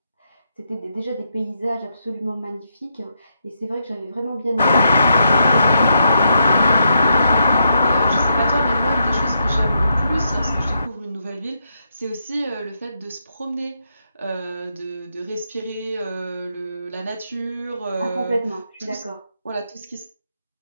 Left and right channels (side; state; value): both; inverted; correlation -0.80